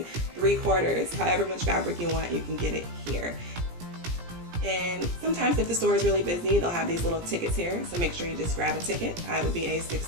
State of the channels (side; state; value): left; late; 17 ms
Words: 3/4, however much fabric you want, you can get it here. And sometimes if the store is really busy, they'll have these little tickets here. So make sure you just grab a ticket. I would be a